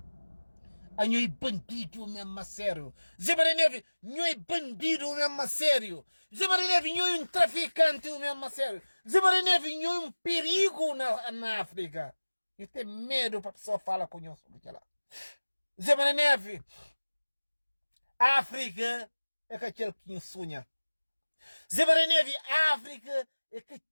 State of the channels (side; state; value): both; inverted; correlation -1.00